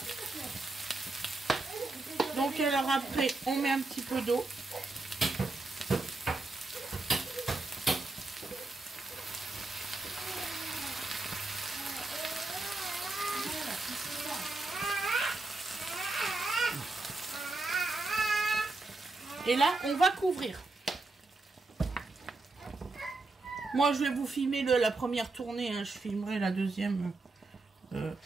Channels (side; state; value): left; quieter; 3.3 dB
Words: Donc alors après, on met un petit peu d'eau. Et là, on va couvrir. Moi, je vais vous filmer la première tournée. Hein. Je filmerai la deuxième